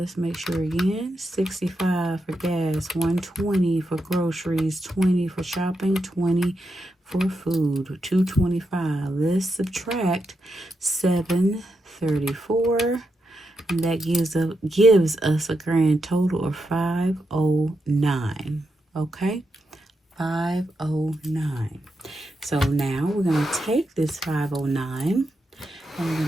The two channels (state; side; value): normal; both; correlation 0.85